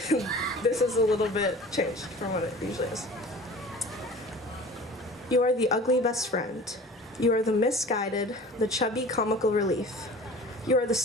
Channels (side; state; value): both; normal; correlation 0.41